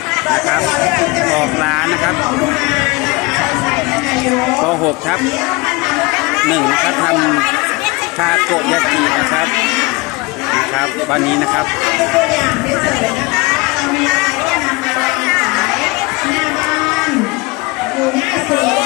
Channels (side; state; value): right; quieter; 24.9 dB